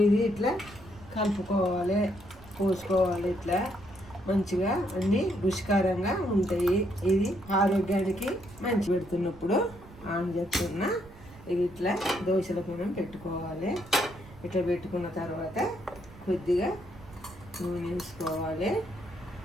ఇది ఇట్లా కలుపుకోవాలి, పోసుకోవాలి. ఇట్లా మంచిగా అన్నీ రుచికరంగా ఉంటాయి. ఇది ఆరోగ్యానికి మంచి. పెడుతున్నప్పుడు ఆన్ చేస్తున్నా. ఇది ఇట్లా దోశల మనం పెట్టుకోవాలి. ఇట్లా పెట్టుకున్న తర్వాత కొద్దిగా నూనె వేసుకోవాలి.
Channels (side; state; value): right; noise; rumble, 20 dB below the sound